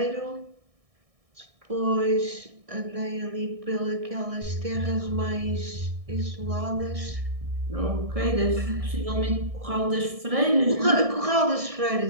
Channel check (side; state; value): left; late; 1.6 ms